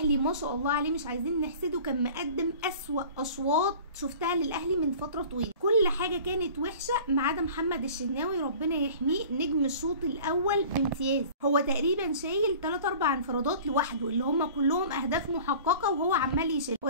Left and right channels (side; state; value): both; inverted; correlation -0.44